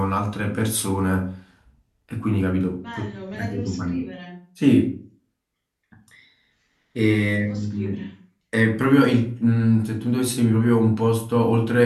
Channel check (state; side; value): identical; both; correlation 1.00